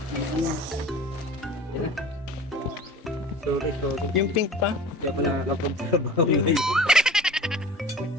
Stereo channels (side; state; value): both; normal; correlation 0.40